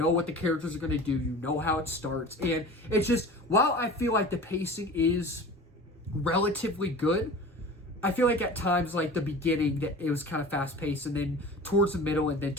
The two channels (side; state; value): both; normal; correlation 0.37